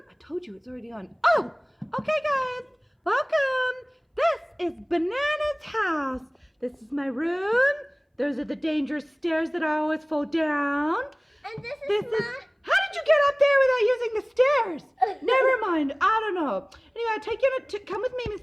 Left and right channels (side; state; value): both; identical; correlation 1.00